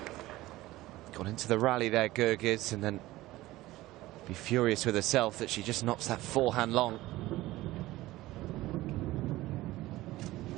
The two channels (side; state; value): left; quieter; 17.5 dB